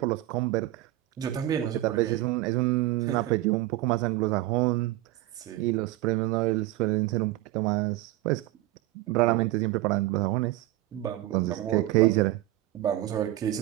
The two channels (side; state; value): left; quieter; 16.3 dB